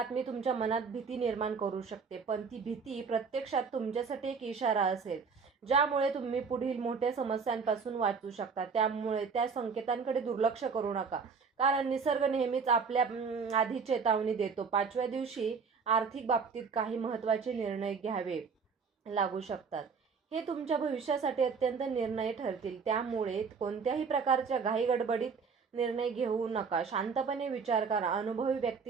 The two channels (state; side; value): quieter; left; 5.4 dB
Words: तुमच्या मनात भीती निर्माण करू शकते, पण ती भीती प्रत्यक्षात तुमच्यासाठी एक इशारा असेल ज्यामुळे तुम्ही पुढील मोठ्या समस्यांपासून वाचू शकता. त्यामुळे त्या संकेतांकडे दुर्लक्ष करू नका, कारण निसर्ग नेहमीच आपल्या आधी चेतावणी देतो. 5व्या दिवशी आर्थिक बाबतीत काही महत्त्वाचे निर्णय घ्यावे लागू शकतात. हे तुमच्या भविष्यासाठी अत्यंत निर्णय ठरतील. त्यामुळे कोणत्याही प्रकारच्या घाईगडबडीत निर्णय घेऊ नका. शांतपणे विचार करा. अनुभवी